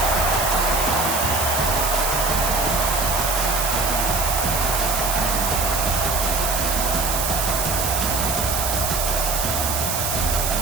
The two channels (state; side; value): noise; right; hiss, 1 dB below the sound